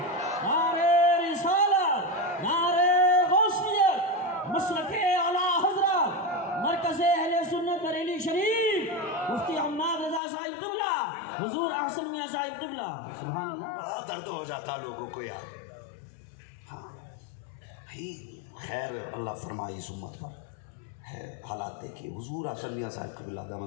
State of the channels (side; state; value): right; drops out; at 10.2 s